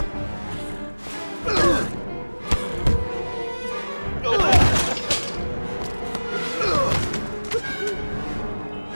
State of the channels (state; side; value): inverted; both; correlation -1.00